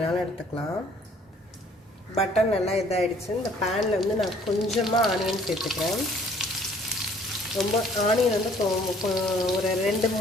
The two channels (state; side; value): normal; both; correlation 0.58